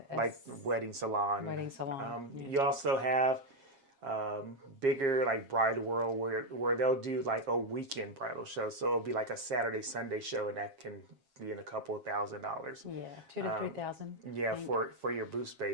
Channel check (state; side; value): late; left; 7.4 ms